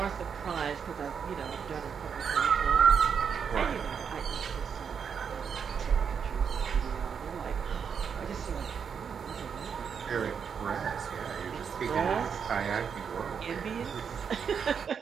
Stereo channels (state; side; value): quieter; left; 6.9 dB